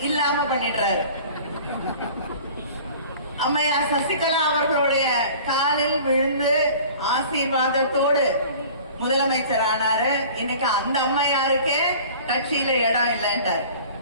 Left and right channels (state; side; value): inverted; both; correlation -0.45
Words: இல்லாம பண்ணிடுறாரு. அம்மையார் சசிகலா அவர்களுடைய காலில் விழுந்து ஆசீர்வாதத்தோடு முதலமைச்சர் ஆனாரு. இன்னைக்கு அந்த அம்மையாருக்கே கட்சியில இடம் இல்லைன்றார்.